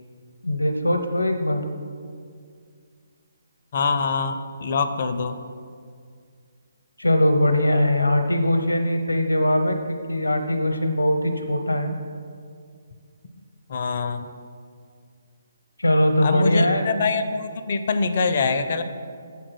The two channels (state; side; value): inverted; both; correlation -0.86